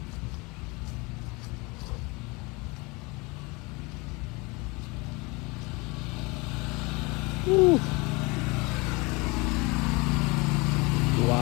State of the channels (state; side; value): quieter; right; 26.5 dB